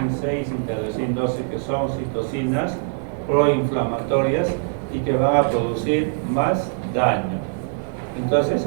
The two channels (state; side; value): silent; left; 64 dB below the other